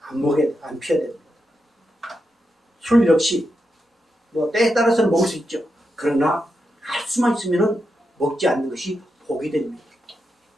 안 피워야 됩니다. 술 역시 뭐 때에 따라서는 먹을 수 있죠. 그러나 할 수만 있으면 먹지 않는 것이 복이 됩니다.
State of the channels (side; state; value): both; normal; correlation 0.86